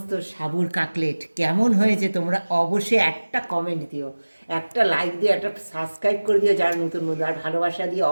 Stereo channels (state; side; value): inverted; both; correlation -1.00